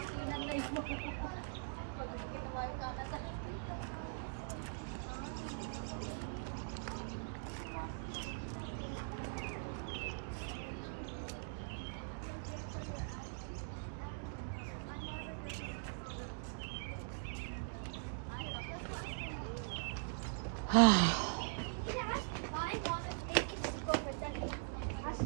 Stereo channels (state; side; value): silent; left; digital silence